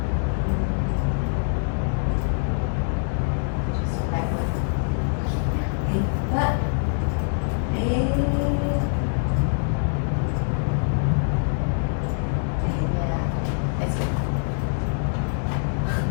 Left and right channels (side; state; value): right; silent; 62 dB below the other